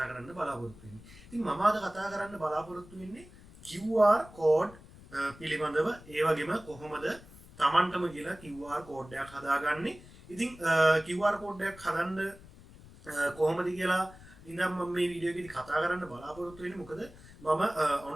කරන්න බලාපොරොත්තු වෙන්නේ? ඉතින් මම අද කතා කරන්න බලාපොරොත්තු වෙන්නේ QR code පිළිබඳව. ඒ වගේම කොහොමද Tamanටම කියලා QR code එකක් හදාගන්නේ. ඉතින් QR code එකක් හදන්න කොහොමද කියලා ඉතින් මම මේ වීඩියෝ එකේදී කතා කරන්න බලාපොරොත්තු වෙන්නේ. මොකද මම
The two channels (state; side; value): noise; left; rumble, 20 dB below the sound